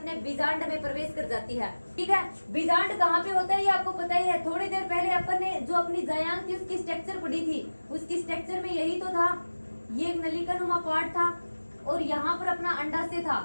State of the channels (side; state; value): both; inverted; correlation -1.00